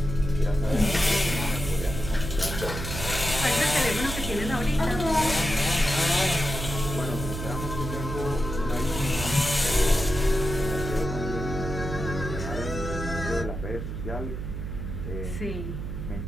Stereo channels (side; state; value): right; noise; hum, 5 dB below the sound